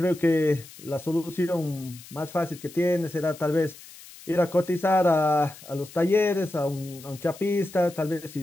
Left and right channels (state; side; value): noise; left; hiss, 19 dB below the sound